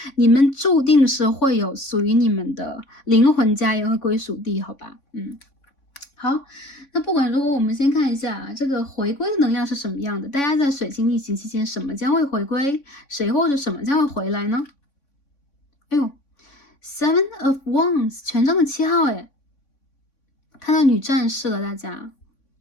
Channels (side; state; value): right; late; 3.6 ms